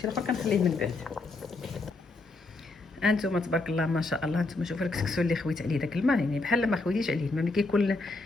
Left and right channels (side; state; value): right; quieter; 3.3 dB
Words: الاخر كنخليه من بعد. انتم تبارك الله ما شاء الله، انتم شوفوا الكسكسو اللي خويت عليه داك الماء، يعني بحال ما خويتيش عليه الماء. ملي كيكون